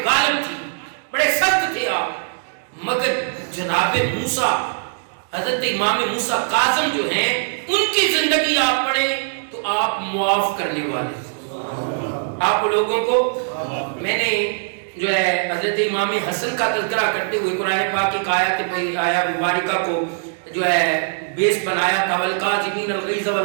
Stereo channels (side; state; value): left; silent; digital silence